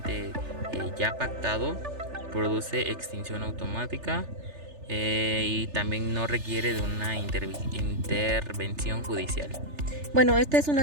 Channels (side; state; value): left; late; 3.4 ms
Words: ya pactado, produce extinción automática, y también no requiere de una intervención judicial. Bueno, esta es